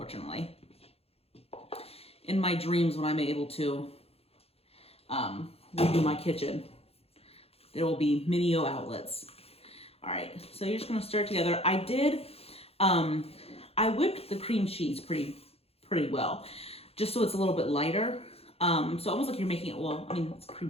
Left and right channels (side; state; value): right; late; 0.29 ms